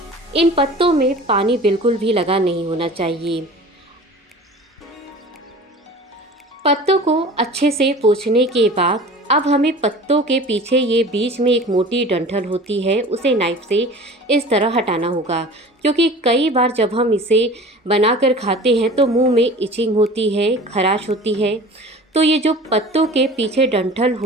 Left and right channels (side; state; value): both; normal; correlation 0.41